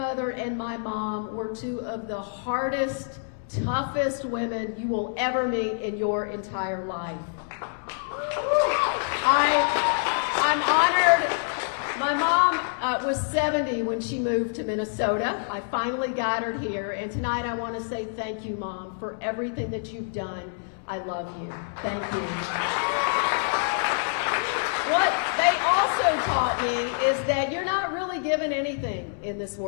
and my mom were 2 of the hardest, toughest women you will ever meet in your entire life. I'm honored. My mom was 70 when she moved to Minnesota. I finally got her here, and tonight I want to say thank you, Mom, for everything that you've done. I love you. Thank you. What they also taught me is that you're not really given anything in this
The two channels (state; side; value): silent; right; digital silence